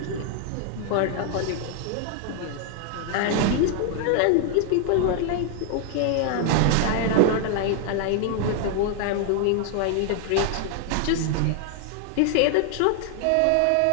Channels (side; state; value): both; different; correlation 0.00